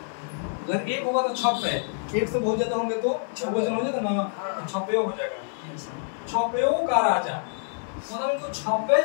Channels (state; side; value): silent; right; digital silence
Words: अगर एक होगा तो छपे, एक से बहुत ज्यादा होंगे तो बहुवचन हो जाएगा ना, तो छपयो हो जाएगा। छपयो का राजा, मतलब इनको छपे